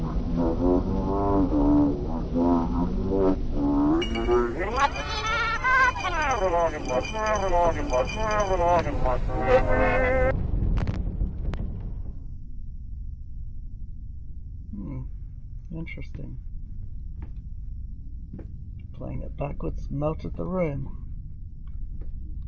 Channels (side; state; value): both; identical; correlation 1.00